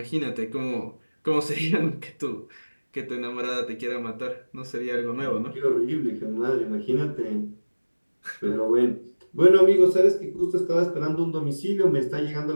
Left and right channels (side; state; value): both; inverted; correlation -1.00